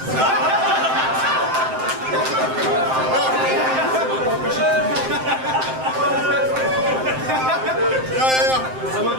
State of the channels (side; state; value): left; late; 7.7 ms